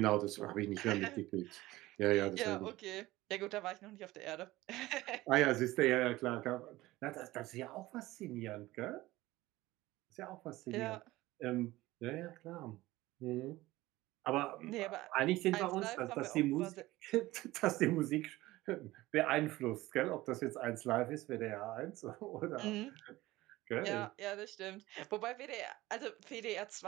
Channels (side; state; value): left; quieter; 18.1 dB